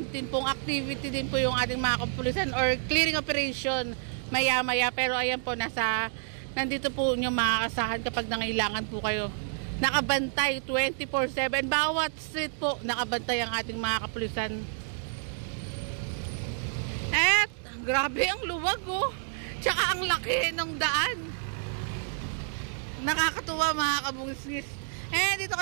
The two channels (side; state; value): left; silent; digital silence